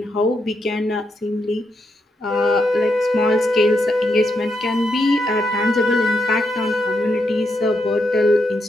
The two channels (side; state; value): both; normal; correlation 0.81